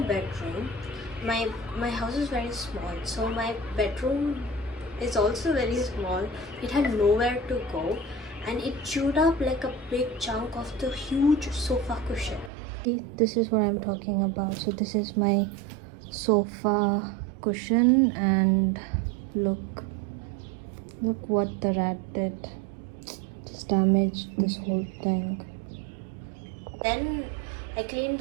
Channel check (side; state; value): left; drops out; at 12.5 s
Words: My house is very small, so my bedroom is also very small. It had nowhere to go, and it chewed up like a big chunk of the huge sofa cushion. See, this is what I'm talking about. So this is my sofa cushion, and look what the rat did. Just damaged this whole thing. Then I cleaned